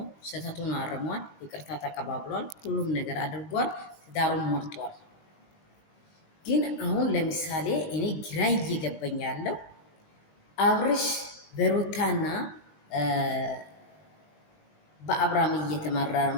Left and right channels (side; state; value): right; late; 20 ms